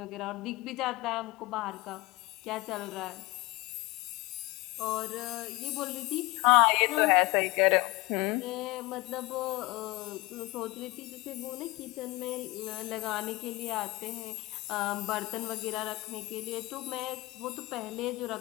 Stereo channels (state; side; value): quieter; right; 21.7 dB